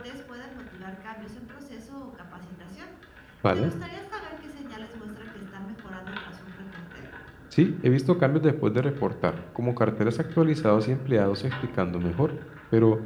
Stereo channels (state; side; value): identical; both; correlation 1.00